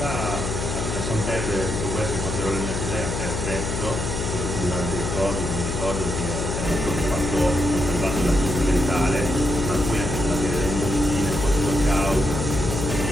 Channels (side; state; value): left; noise; hum, 3 dB below the sound